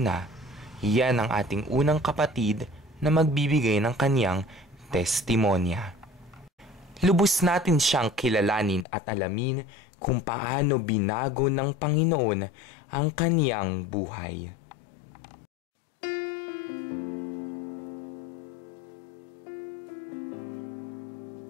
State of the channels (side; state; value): right; drops out; at 8.8 s